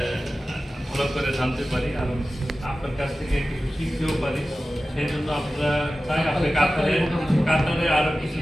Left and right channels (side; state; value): both; normal; correlation 0.95